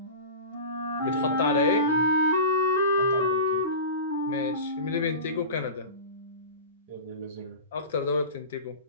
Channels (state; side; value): inverted; both; correlation -0.31